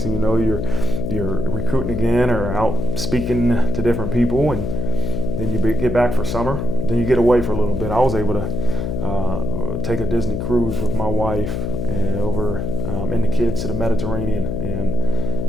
thing you know, you're recruiting again or out speaking to different people, and then you get back for summer. Then you get away for a little bit. I was able to take a Disney cruise with my wife over and the kids to the Mediterranean, and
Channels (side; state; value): left; noise; hum, 3 dB below the sound